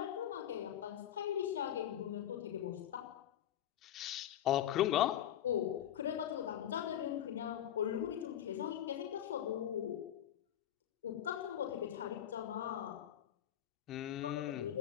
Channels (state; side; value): quieter; right; 10.8 dB